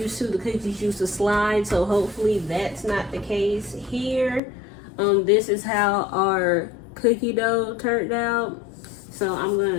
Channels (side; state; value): right; drops out; at 4.4 s